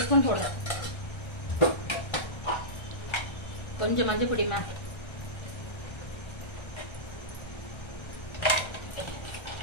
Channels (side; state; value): right; late; 1.3 ms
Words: ஸ்பூன் போடுறேன். கொஞ்சம் மஞ்சள் பொடிமா,